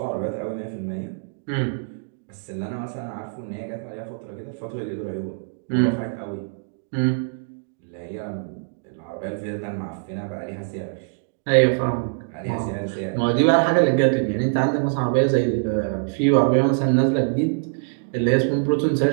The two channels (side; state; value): left; silent; digital silence